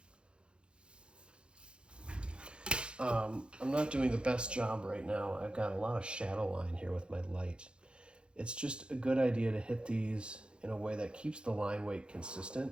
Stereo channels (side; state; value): left; late; 0.055 ms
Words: I'm not doing the best job right now. I've got a lot of shadow line here with my light. It's just a good idea to hit these in a way that keeps the line weight